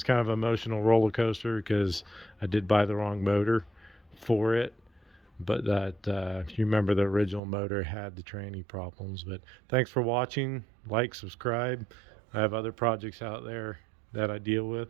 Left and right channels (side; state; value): left; drops out; at 7.4 s